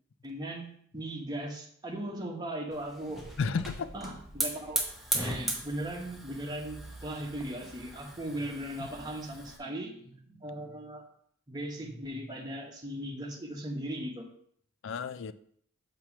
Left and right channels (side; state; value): both; normal; correlation 0.51